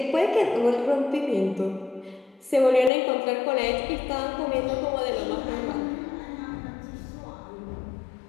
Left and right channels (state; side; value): drops out; right; at 2.9 s